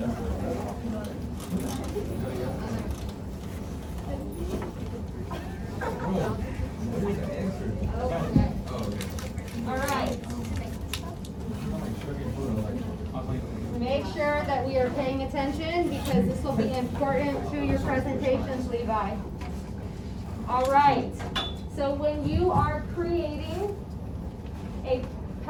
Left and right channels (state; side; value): identical; both; correlation 1.00